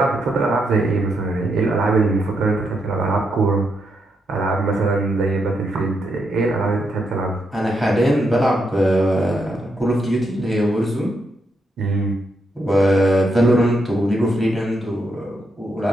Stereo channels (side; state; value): both; normal; correlation 0.80